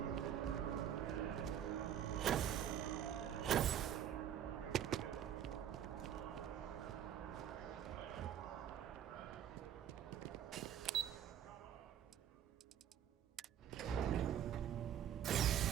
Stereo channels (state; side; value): quieter; left; 9.9 dB